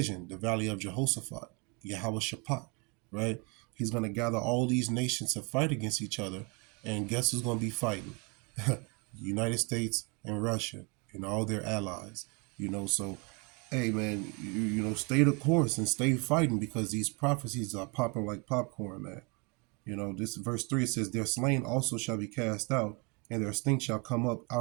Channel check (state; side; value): quieter; left; 30.7 dB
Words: the valley of Jehoshaphat, Yahweh Shaphat, right? He's going to gather all these nations to fight against each other, and guess who's going to be fighting? The United States and Russia and all their allies. So hey man, stay the course and stay fighting, because these prophecies are popping like popcorn, man. This verse 3, it says, "Their slain also shall be cast out, and their stink shall come up